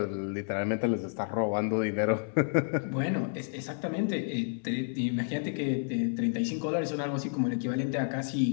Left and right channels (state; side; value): silent; right; 58 dB below the other